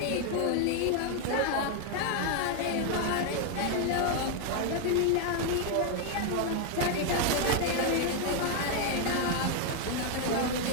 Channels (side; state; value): both; different; correlation 0.00